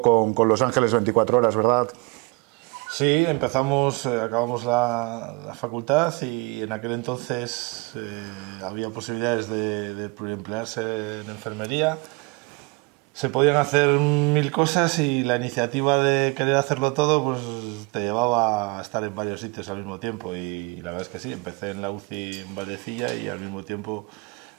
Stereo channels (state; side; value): quieter; left; 28.1 dB